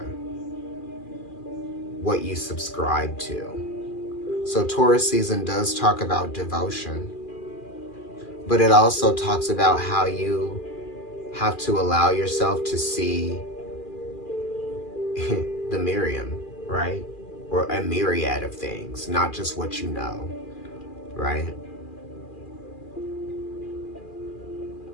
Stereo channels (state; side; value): late; right; 2.4 ms